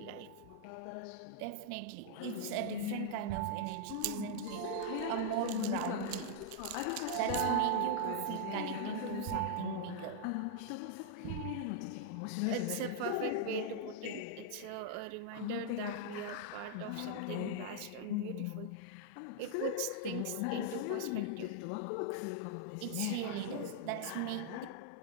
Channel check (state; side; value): different; both; correlation -0.01